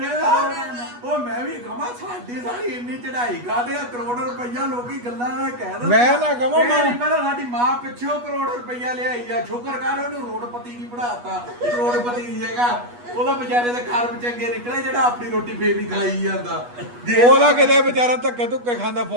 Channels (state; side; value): late; left; 8.3 ms